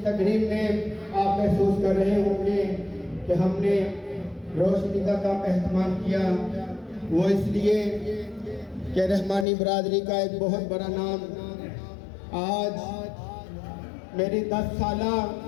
तकरीब में आप महसूस कर रहे होंगे कि हमने रोशनी का कम एहतमाम किया, वो इसलिए कि रहमानी बरादरी का एक बहुत बड़ा नाम आज मेरी 10 साला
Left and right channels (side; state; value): right; drops out; at 9.5 s